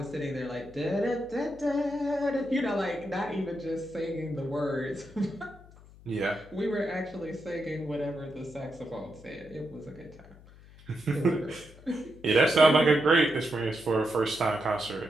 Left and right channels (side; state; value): left; noise; hum, 22 dB below the sound